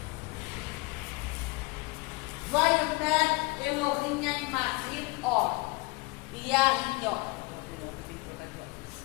Vaiomer Elohim Animachim Or Yahinho.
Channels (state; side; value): quieter; right; 25.6 dB